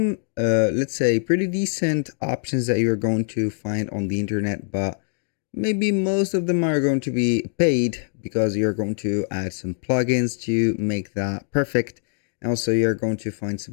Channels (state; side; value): silent; right; digital silence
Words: let's say pretty decent options that you're going to find on the internet, but maybe most of them are going to be paid because you're going to add some plugins to make that perfect. Also, you're going to find